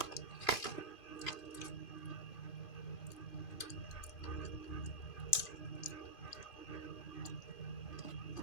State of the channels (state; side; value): late; right; 2.5 ms